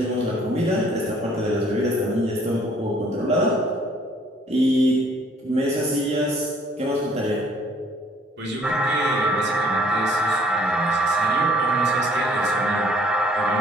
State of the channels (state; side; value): normal; both; correlation 0.59